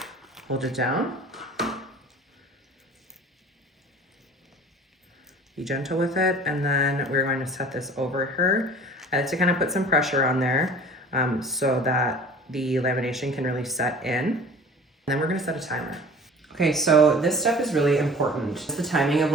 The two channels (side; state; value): both; normal; correlation 0.44